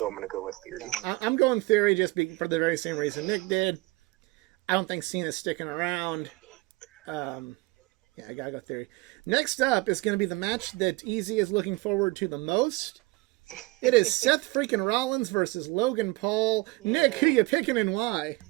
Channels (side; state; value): left; quieter; 22.7 dB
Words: I'm going to go with Theory. I'm going Theory just for the very same reason Nick did. I don't think Cena's sticking around. Yeah, I gotta go Theory. Next up is going to be the match that Easy is looking forward to the most. It is Seth freaking Rollins versus Logan Paul. Yeah. Nick, who you picking and why?